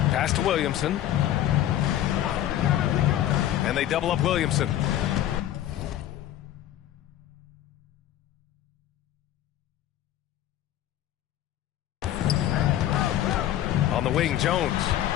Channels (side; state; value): right; quieter; 12.4 dB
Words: Pass to Williamson. And they double up Williamson. On the wing, Jones.